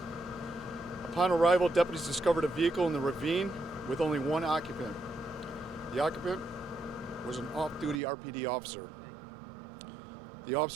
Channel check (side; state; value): left; drops out; at 8.0 s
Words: Upon arrival, deputies discovered a vehicle in the ravine with only one occupant. The occupant was an off-duty RPD officer. The